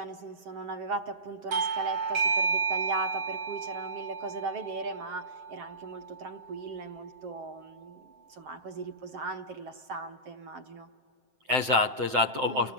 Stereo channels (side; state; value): left; late; 7.7 ms